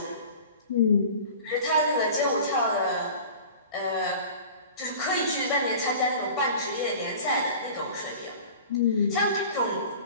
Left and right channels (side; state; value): both; inverted; correlation -0.40